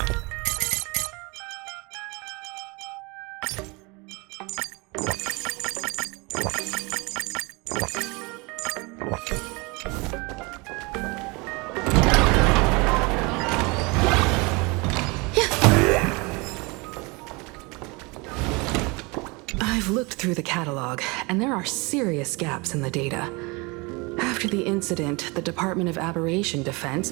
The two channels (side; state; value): left; quieter; 27.2 dB